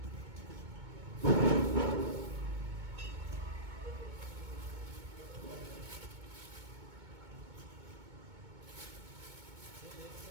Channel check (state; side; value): late; left; 2.2 ms